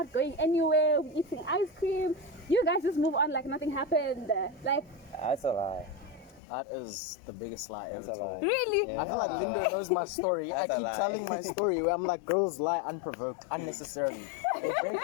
going anywhere, we're eating ice cream. You guys just move on like nothing happened. Like, that's a lie. That is the biggest lie ever told. Really? Yeah. I feel like Linda knows my story. I keep telling my story where I'm like, girls lie unprovoked, unnecessarily. They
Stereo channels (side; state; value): right; drops out; at 6.4 s